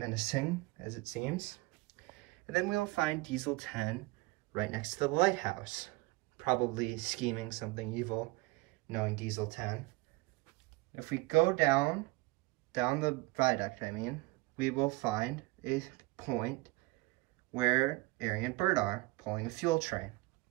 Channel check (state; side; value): quieter; left; 22.2 dB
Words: as it seems. And then we'll find Diesel 10 right next to the lighthouse, probably scheming something evil, knowing Diesel 10. If we go down the viaduct, we will find a point where Ari and Bert are, pulling a fuel train.